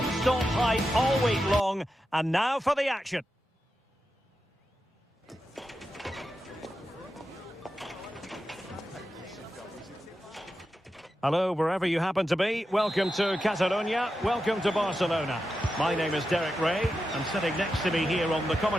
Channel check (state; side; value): normal; both; correlation 0.89